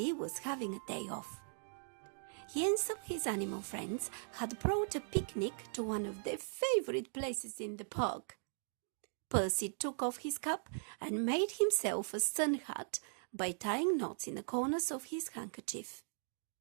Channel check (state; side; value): silent; left; digital silence